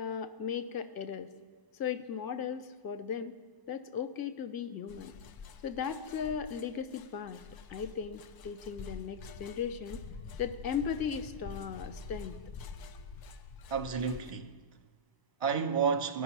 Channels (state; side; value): late; right; 1.0 ms